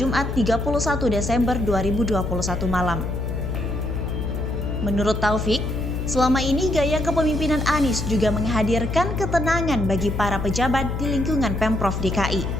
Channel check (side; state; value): left; noise; hum, 3 dB below the sound